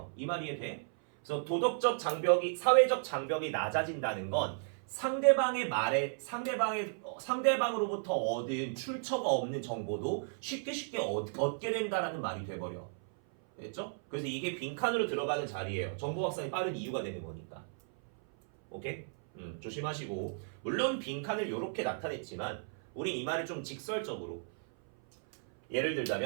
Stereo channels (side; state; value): left; silent; 55 dB below the other